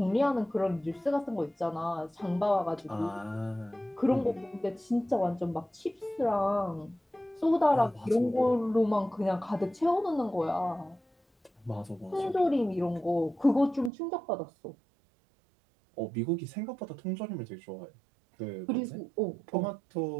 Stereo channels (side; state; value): left; drops out; at 13.9 s